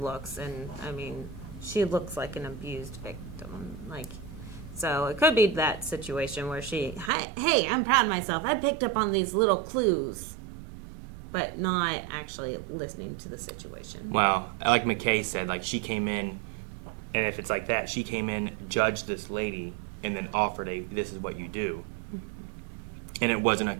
And, I mean, she looks like an abused victim. Like, so it could be that situation where she, hey, I'm proud of myself. I picked up on these little clues, but not actually listening to the situation. Well, like McKay said, like she came in, and if it's like that, she came in, judged this lady, and then offered this is what you do. And it wasn't a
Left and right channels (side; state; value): left; drops out; at 7.1 s